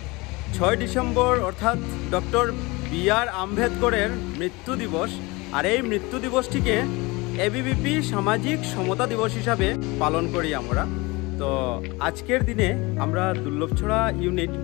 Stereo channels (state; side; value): quieter; right; 24.2 dB